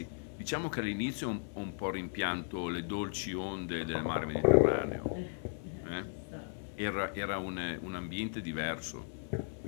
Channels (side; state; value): right; silent; digital silence